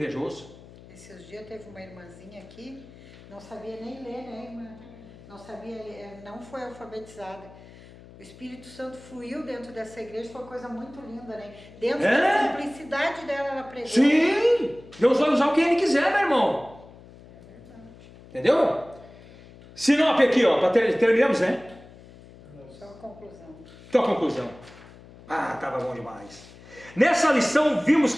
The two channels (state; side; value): noise; left; hum, 21 dB below the sound